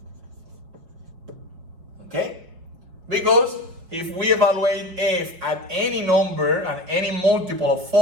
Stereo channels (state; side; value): late; left; 5.6 ms